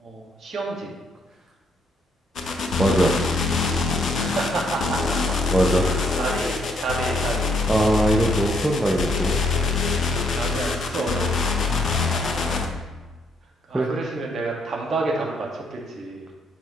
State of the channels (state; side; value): normal; both; correlation 0.71